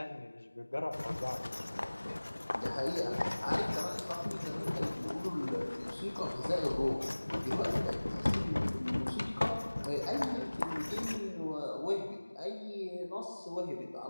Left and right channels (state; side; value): inverted; both; correlation -1.00